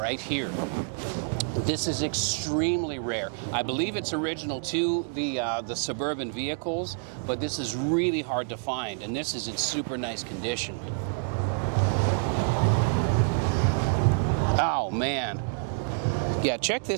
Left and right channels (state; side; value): silent; left; digital silence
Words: here. This is extremely rare. I believe it's original to the Suburban vehicles, but this is really hard to find, and this is in super nice condition. Oh, man. Yeah, check